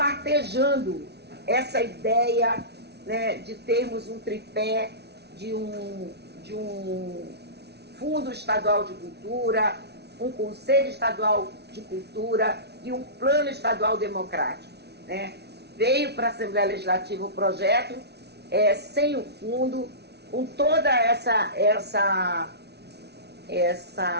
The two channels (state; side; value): late; left; 0.49 ms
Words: essa ideia, né, de termos um tripé de um Fundo Estadual de Cultura, um Conselho Estadual de Cultura e um Plano Estadual Democrático, né? Veio para a Assembleia Legislativa o projeto sem o fundo, com toda essa